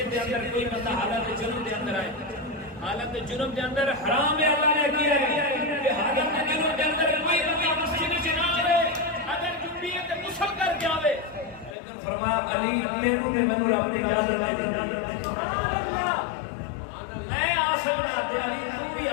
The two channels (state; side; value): drops out; right; at 11.8 s